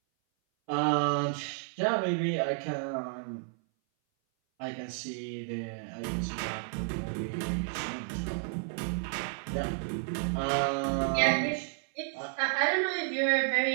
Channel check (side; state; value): left; silent; 57 dB below the other